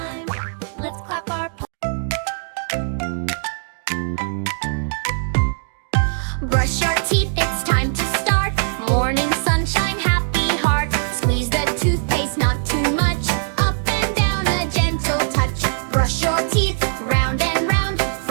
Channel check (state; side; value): silent; left; digital silence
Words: Let's clap our Brush your teeth, it's time to start. Morning sunshine, happy heart. Squeeze the toothpaste, not too much. Up and down, a gentle touch. Brush your teeth, round and round.